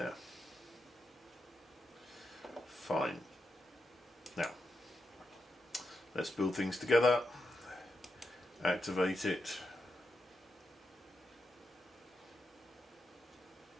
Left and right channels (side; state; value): both; normal; correlation 0.86